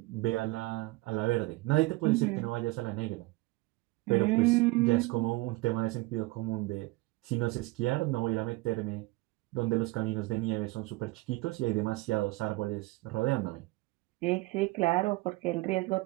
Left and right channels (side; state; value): left; quieter; 21.8 dB